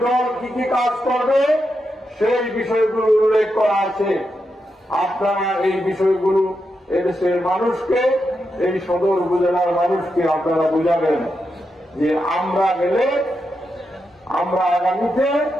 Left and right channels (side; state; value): both; normal; correlation 0.86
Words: দল কি কি কাজ করবে, সেই বিষয়গুলো উল্লেখ করা আছে। আপনারা এই বিষয়গুলো এদেশের মানুষকে, এই সদর উপজেলার মানুষকে আপনারা বুঝাবেন যে আমরা গেলে, আমরা আগামীতে